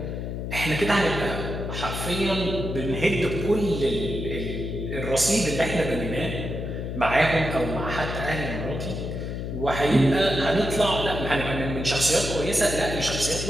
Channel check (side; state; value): left; noise; hum, 5 dB below the sound